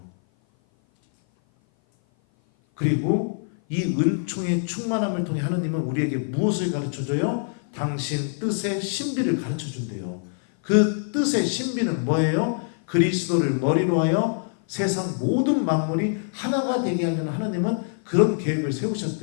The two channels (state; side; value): silent; right; 56 dB below the other